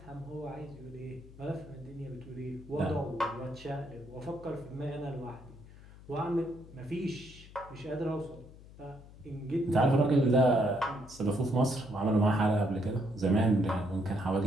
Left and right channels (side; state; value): left; noise; hum, 19 dB below the sound